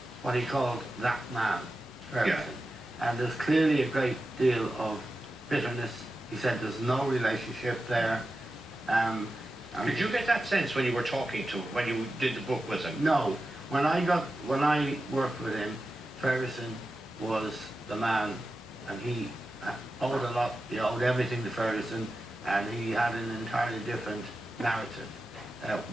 what he called that man, Ferguson. Yeah. And there's clearly a great deal of bitterness. He said there's no relationship there. Did you get that sense when you were talking to him, when you did the book with him? No. When I worked with him, Ferguson was the man, and he owed a lot. He owed everything to Ferguson, and he had an entirely different narrative.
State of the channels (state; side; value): normal; both; correlation 0.92